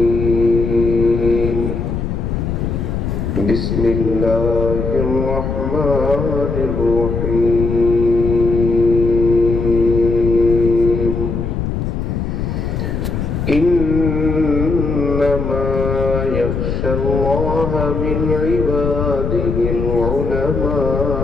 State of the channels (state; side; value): noise; left; rumble, 2 dB below the sound